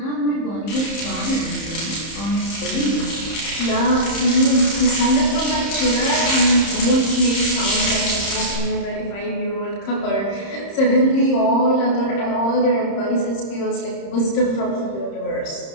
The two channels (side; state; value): right; late; 30 ms